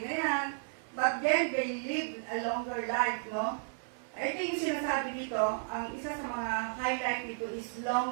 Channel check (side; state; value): left; silent; digital silence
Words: na yan. But then, they live a longer life, no? Ito yung sinasabi dito, ang isa sa mga highlight dito is